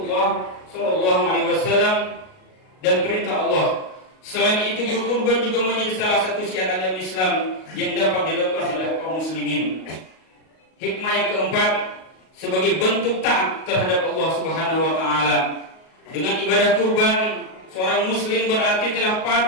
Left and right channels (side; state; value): right; late; 38 ms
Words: Shallallahu Alaihi Wasallam dan perintah Allah. Selain itu, berkurban juga menjadi salah satu syiar agama Islam yang dapat dilakukan oleh kaum muslimin. Hikmah yang keempat, sebagai bentuk taat terhadap Allah Subhanahu Wa Taala. Dengan ibadah kurban, seorang muslim berarti telah